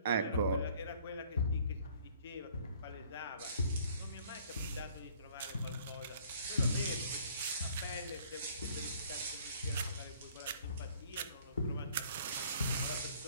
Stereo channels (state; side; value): inverted; both; correlation -0.57